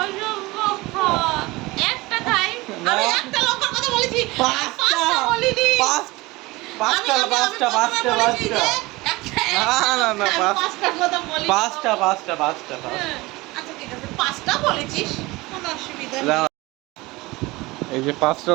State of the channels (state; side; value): quieter; left; 21.7 dB